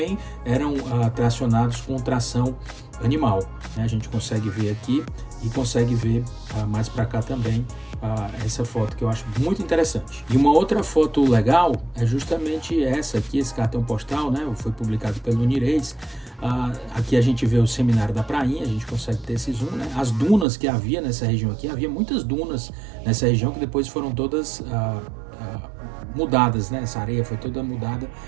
eram tracionados com tração animal, né? A gente consegue ver aqui e consegue ver mais para cá também essa foto, que eu acho muito interessante. E uma outra foto legal é justamente essa aqui, esse cartão postal, né? Foi publicado pelo Nirês. Aqui a gente vê o Seminário da Prainha, a gente consegue ter esse zoom, né? As dunas que havia nessa região aqui, havia muitas dunas nessa região que depois foram todas mudadas, né? Essa areia foi toda mudada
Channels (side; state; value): left; drops out; at 20.5 s